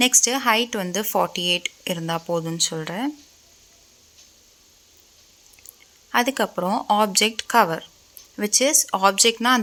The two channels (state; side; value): identical; both; correlation 1.00